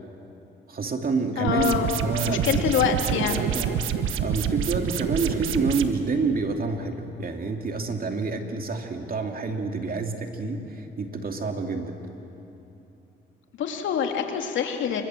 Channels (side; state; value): both; normal; correlation 0.36